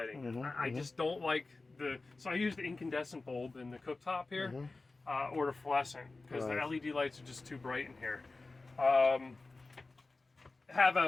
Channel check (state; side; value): quieter; right; 3.5 dB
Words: I just don't like so I use the incandescent bulb in the cooktop here, or the fluorescent, because the LED lights are just too bright in here. Have